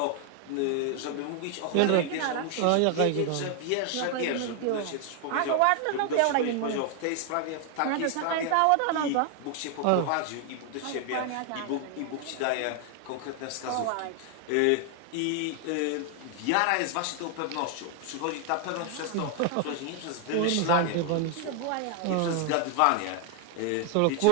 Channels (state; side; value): different; both; correlation 0.00